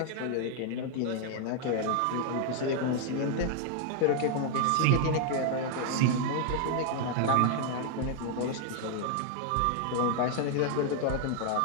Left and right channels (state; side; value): different; both; correlation 0.00